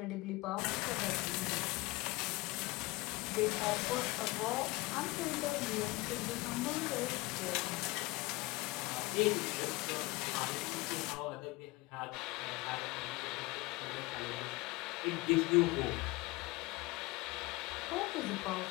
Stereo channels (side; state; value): right; quieter; 22.6 dB